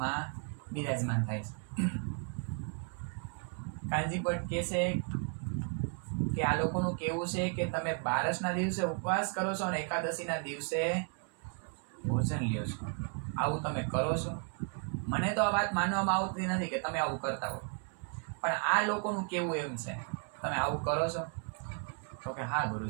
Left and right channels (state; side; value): quieter; left; 39.8 dB